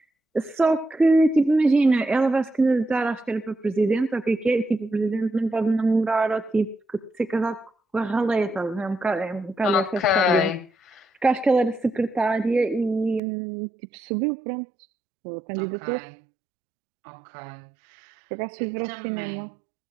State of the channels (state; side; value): drops out; left; at 13.2 s